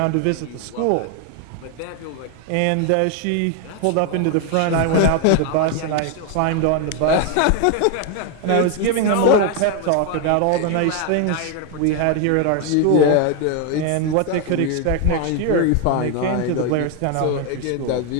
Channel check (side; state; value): both; different; correlation 0.01